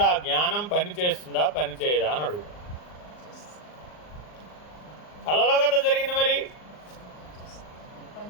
ఆ జ్ఞానం పని చేస్తుందా పని చేయదా అని అడుగుతాం. కళలో కదా జరిగింది. మరి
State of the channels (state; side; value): late; right; 39 ms